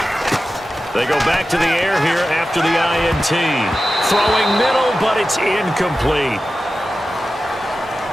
They go back to the air here after the INT. Throwing middle, but it's incomplete.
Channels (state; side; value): normal; both; correlation 0.94